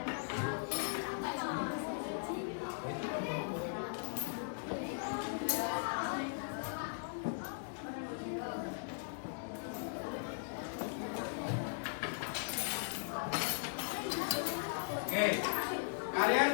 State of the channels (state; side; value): silent; right; digital silence